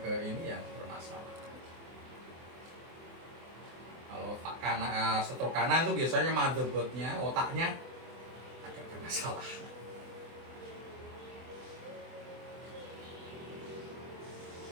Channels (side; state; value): left; late; 24 ms